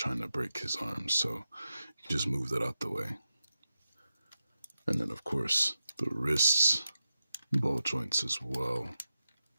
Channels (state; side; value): inverted; both; correlation -0.89